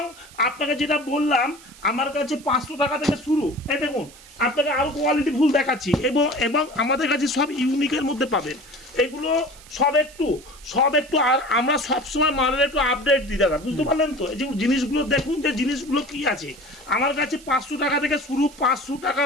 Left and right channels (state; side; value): noise; right; hiss, 21 dB below the sound